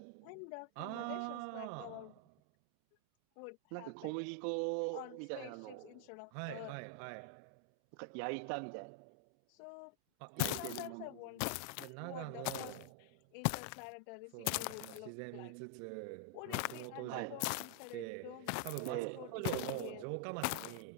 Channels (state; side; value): different; both; correlation 0.00